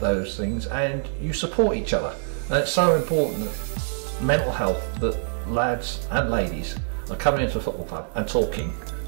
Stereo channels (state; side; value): silent; left; 60 dB below the other